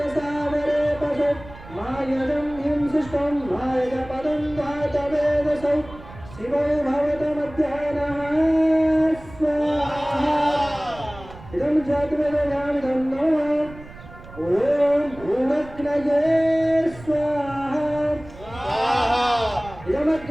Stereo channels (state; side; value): noise; right; rumble, 18 dB below the sound